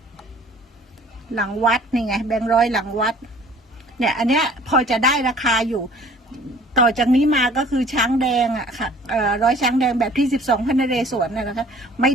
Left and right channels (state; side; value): normal; both; correlation 0.52